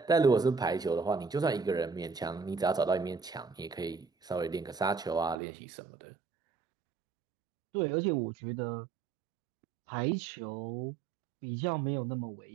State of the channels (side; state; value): left; drops out; at 5.4 s